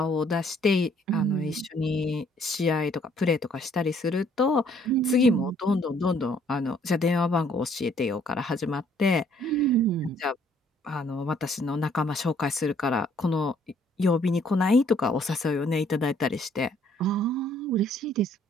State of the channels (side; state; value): both; normal; correlation 0.63